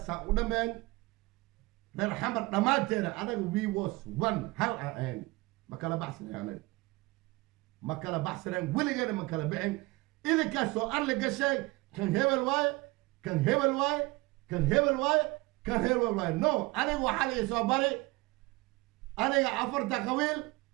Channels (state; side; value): quieter; left; 22.9 dB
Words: رن حمر دماتينا أنا we was one هل أين ما كلا بحثنا يعني ما كلا بحثنا ويليغينا ما كلا بعين إذا كان سؤال لك شيء كان هبل واي كان هبل واي كان هبل واي كان هبل واي نو أنا وحالي صبري أنا عفرت قويل